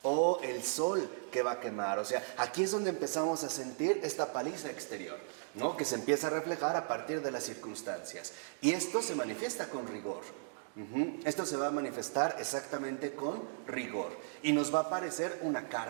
o el sol que va a quemar. O sea, aquí es donde empezamos a sentir esta paliza exterior, ¿no?, que se empieza a reflejar a partir de las circunstancias. Y esto se manifiesta con rigor. Esto se va a manifestar exactamente con rigor. Y nos va a parecer una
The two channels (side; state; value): left; silent; digital silence